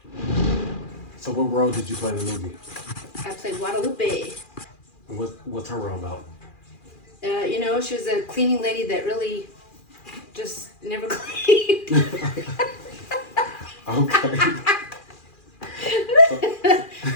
So what role did you play in the movie? I played Guadalupe. And what's her role about? You know, she was a cleaning lady that really just never cleaned. Okay.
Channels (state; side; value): late; right; 2.4 ms